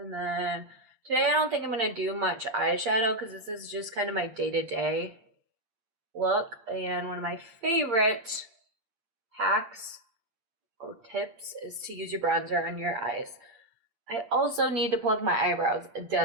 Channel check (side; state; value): left; late; 8.7 ms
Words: then today I don't think I'm gonna do much eyeshadow because this is just kind of my day-to-day look. And one of my favorite hacks or tips is to use your bronzer on your eyes. I also need to plug my eyebrows